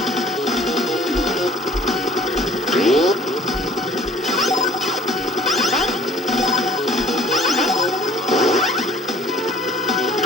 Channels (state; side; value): normal; both; correlation 0.51